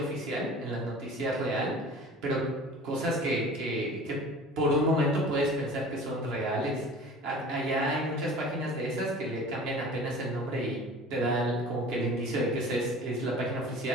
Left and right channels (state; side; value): normal; both; correlation 0.42